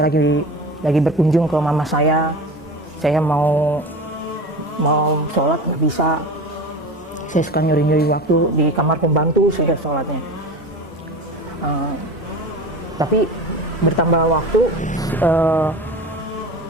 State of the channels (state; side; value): normal; both; correlation 0.32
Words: lagi berkunjung ke mama saya mau sholat nggak bisa, saya suka nyuri waktu di kamar pembantu saya sholatnya. Tapi bertambah waktu,